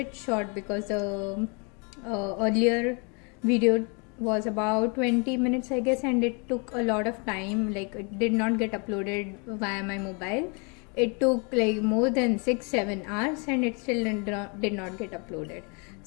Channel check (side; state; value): right; quieter; 33.9 dB